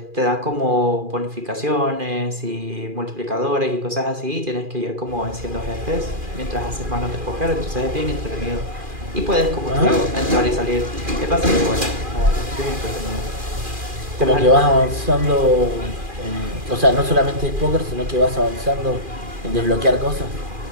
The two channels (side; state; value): left; late; 2.4 ms